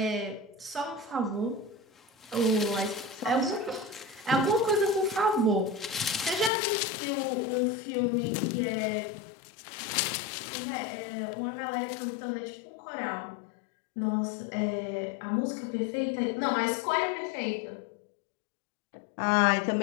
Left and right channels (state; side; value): drops out; right; at 6.5 s